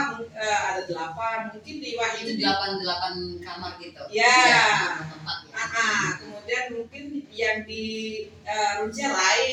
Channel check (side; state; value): both; identical; correlation 1.00